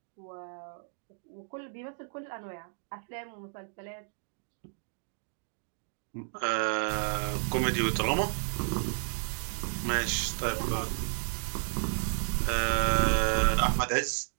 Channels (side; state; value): left; silent; digital silence